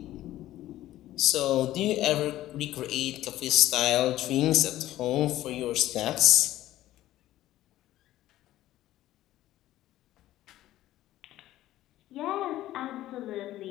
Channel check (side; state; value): right; quieter; 14.5 dB